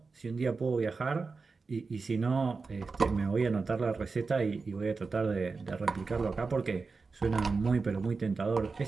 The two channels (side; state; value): left; quieter; 4.4 dB